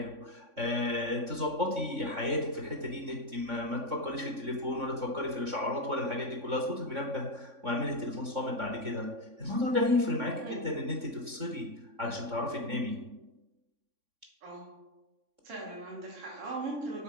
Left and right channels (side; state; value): left; late; 3.6 ms